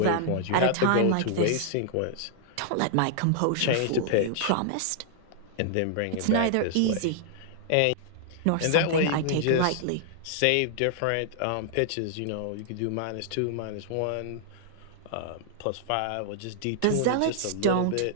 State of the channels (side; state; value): both; different; correlation -0.01